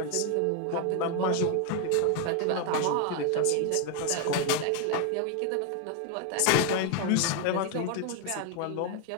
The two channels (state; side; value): different; both; correlation 0.01